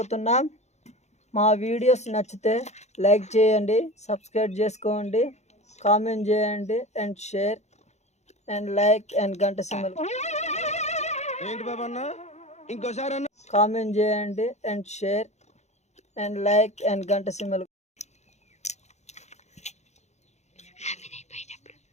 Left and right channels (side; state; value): right; late; 0.33 ms